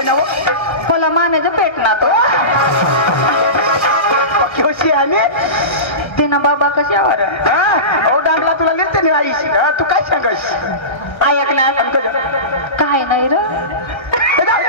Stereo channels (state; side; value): late; right; 1.1 ms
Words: ना मला मानेचं पेट ना तो कशी आणि ते ना बाबा कशावर ओ डांगला तुला लिहिते नाही आईस तू काय सांगस ऐक ना काय नाही र